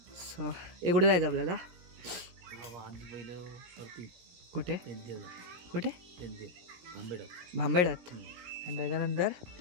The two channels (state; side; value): late; left; 17 ms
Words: सो कुठे जायचं आपल्याला? कुठे कुठे? भांबेडात आणि त्याच्यानंतर